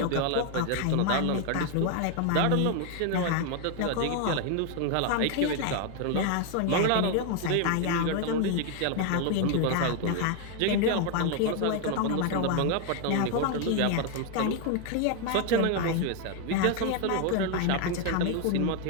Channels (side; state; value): both; different; correlation 0.01